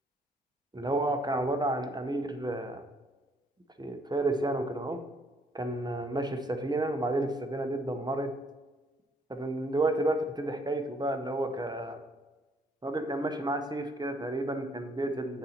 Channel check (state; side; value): normal; both; correlation 0.66